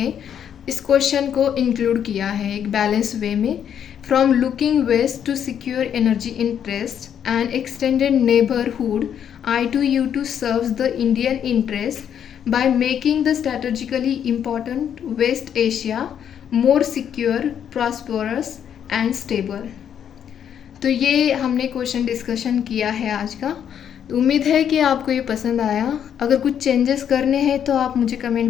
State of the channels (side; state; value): right; quieter; 8.9 dB